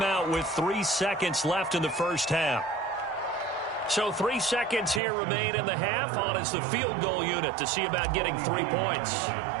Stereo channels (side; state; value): left; drops out; at 5.0 s